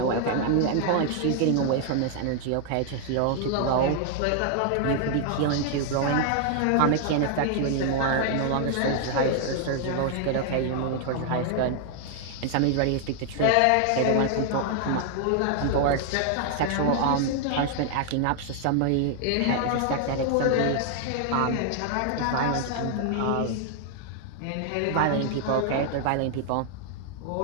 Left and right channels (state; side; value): different; both; correlation 0.00